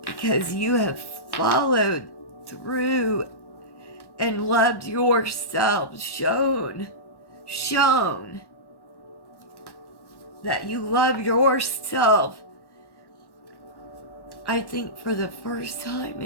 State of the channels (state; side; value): late; right; 1.1 ms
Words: Because you have followed through and loved yourself. Shown that you love yourself. I think for the first time